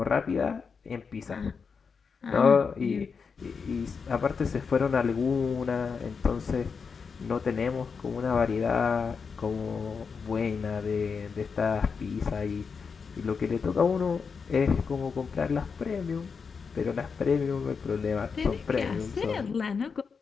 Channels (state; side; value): quieter; right; 5.6 dB